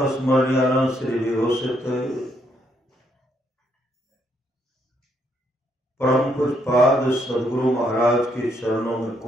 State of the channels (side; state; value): both; normal; correlation 0.73